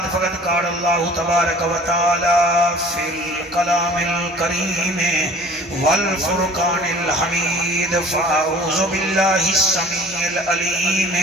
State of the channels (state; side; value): normal; both; correlation 0.48